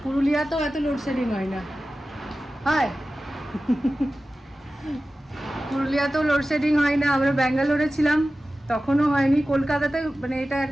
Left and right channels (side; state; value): both; normal; correlation 0.95